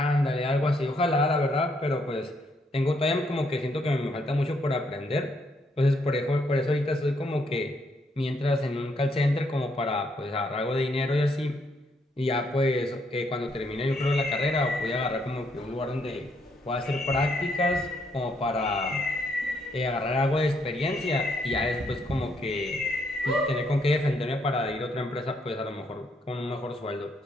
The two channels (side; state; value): both; normal; correlation 0.73